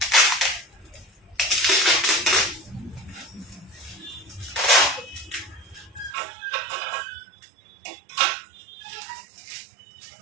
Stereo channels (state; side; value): drops out; left; at 6.1 s